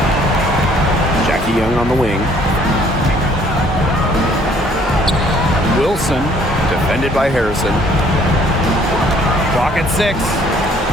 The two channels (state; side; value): normal; both; correlation 0.60